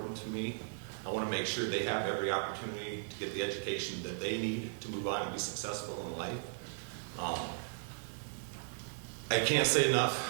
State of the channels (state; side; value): silent; left; digital silence